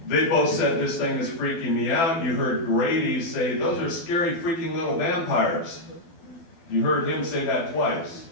they both said this thing is freaking me out. You heard Grady say, those are scary freaking little vampires. You heard him say that twice.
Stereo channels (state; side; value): late; right; 12 ms